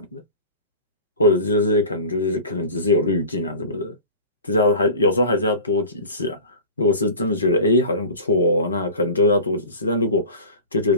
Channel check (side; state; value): both; inverted; correlation -0.36